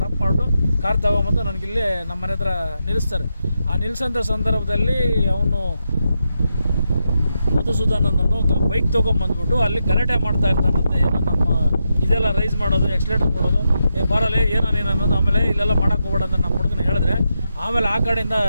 ಮಾಡಿಬಿಟ್ಟು ಕಾರ್ ತೊಗೊಂಬಂದು ನನಗಿಲ್ಲೇ ನಮ್ಮ ಮನೆ ಹತ್ರ ನಿಲ್ಲಿಸ್ತಾರೆ. ಆ ನಿಲ್ಲಿಸೋಂಥ ಸಂದರ್ಭದಲ್ಲಿ ಅವನು ಮಧುಸೂದನ್ ಅನ್ನೋನು ಬೈಕ್ ತೊಗೊಂಬಂದ್ಬಿಟ್ಟು ಅಲ್ಲಿ ಗಲಾಟೆ ಮಾಡ್ತಾ ಇರ್ತಾನಂತೆ. ಏನೋ ನಮ್ಮ ಇದೆಲ್ಲ ರೈಸ್ ಮಾಡೋದು, ಎಕ್ಸ್ಲೇಟರ್ ಕೊಡೋದು, ಬರಲ್ಲ ಏನೋ ನೀನು ಅನ್ನೋದು. ಆಮೇಲೆ ಇಲ್ಲೆಲ್ಲ ಮಾಡೋಕ್ಕೆ ಹೋಗ್ಬೇಡ ಅಂತ ನಮ್ಮ ಹುಡುಗನ ಹೇಳಿದ್ರೆ ಆಮೇಲೆ ಆ ಕಡೆಯಿಂದ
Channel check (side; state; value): both; inverted; correlation -0.85